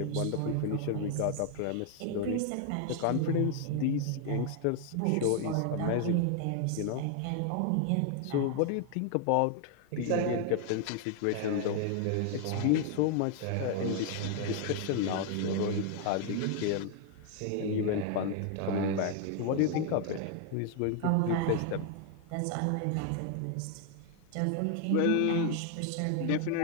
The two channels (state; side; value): different; both; correlation 0.00